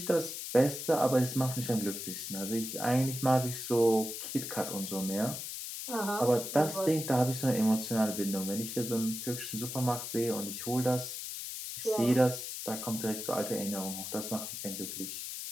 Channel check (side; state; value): left; noise; hiss, 6 dB below the sound